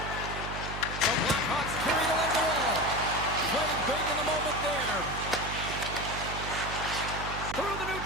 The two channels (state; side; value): noise; right; hum, 7 dB below the sound